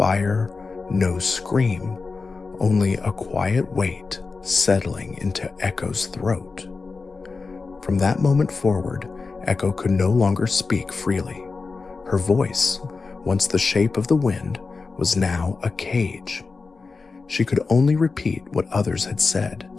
no scream, only a quiet weight settling into Echo's throat. From that moment forward, Echo could no longer speak freely. Her voice, once the shape of the wind, was now a cage. She could only repeat what others had said,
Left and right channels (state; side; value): quieter; right; 4.3 dB